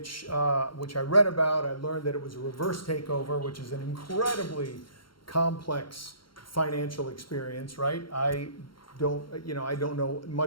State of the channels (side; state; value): right; late; 0.73 ms